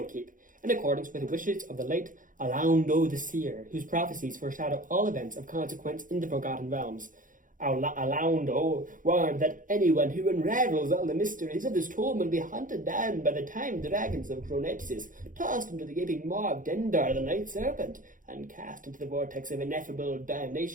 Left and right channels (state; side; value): late; left; 0.39 ms